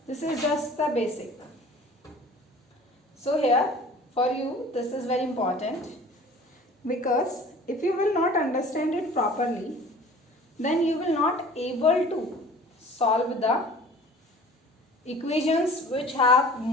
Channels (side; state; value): both; normal; correlation 0.46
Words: This is just the basic. So here for you this is very important, because if you will not understand it properly, then you will not able to solve the equations which have